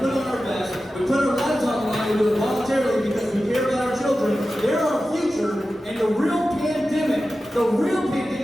on our vest, we put our lives on the line, we do it voluntarily because we care about our children. They're our future, and the real pandemic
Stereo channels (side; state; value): both; normal; correlation 0.94